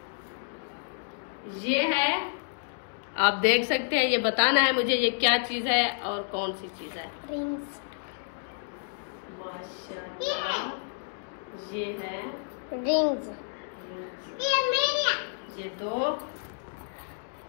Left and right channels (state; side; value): silent; right; digital silence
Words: ये है, आप देख सकते हैं। ये बताना है मुझे ये क्या चीज है और कौन सी चीज है। रिंग्स। माशाल्लाह ये है रिंग्स। ये 2